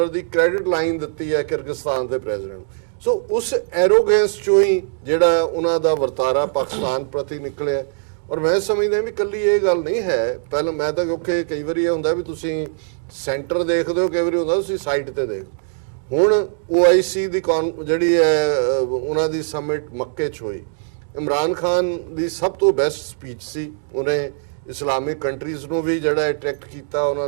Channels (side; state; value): left; silent; digital silence